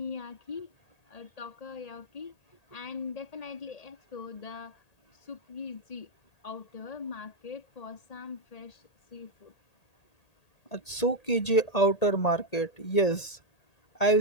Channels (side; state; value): right; late; 1.8 ms